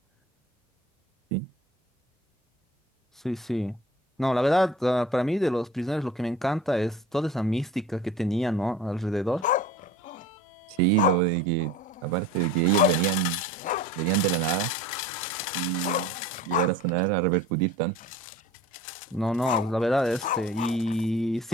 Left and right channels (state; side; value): normal; both; correlation 0.42